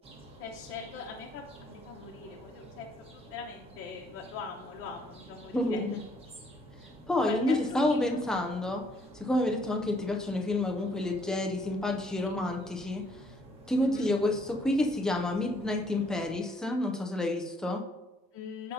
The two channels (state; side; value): normal; both; correlation 0.67